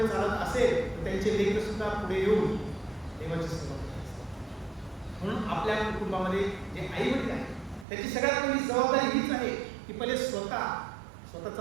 चालत असेल तर त्यांचे लेकर सुद्धा पुढे येऊन देवाची सेवा करतात. म्हणून आपल्या कुटुंबामध्ये जे आई वडील आहेत त्याची सगळ्यात पहिली जबाबदारी हीच आहे की पहिले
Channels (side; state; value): left; drops out; at 7.9 s